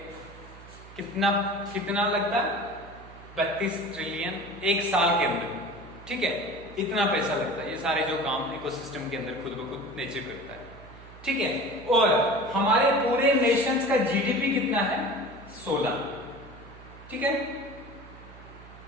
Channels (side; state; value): right; noise; hum, 19 dB below the sound